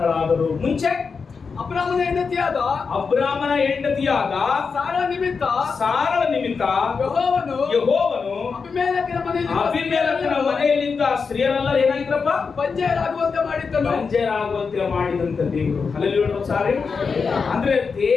ಮುಂಚೆ ಅಬ್ರಾಮನ ಹೆಂಡತಿಯಾದ ಸಾರಳ ನಿಮಿತ್ತ ಯೆಹೋವನು ಅಬೀಮೆಲೆಕನ ಮನೆಯಲ್ಲಿದ್ದ ಸ್ತ್ರೀಯರೆಲ್ಲ ಏನಾಗಿದ್ರಪ್ಪ? ಬಂಜೆಯರಾಗುವಂತೆ ಮಾಡಿದಂತ ದೇವರು. ಹಲ್ಲೆಲೂಯಾ ಸಾರಿ. ಅಂದ್ರೆ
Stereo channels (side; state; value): right; quieter; 5.2 dB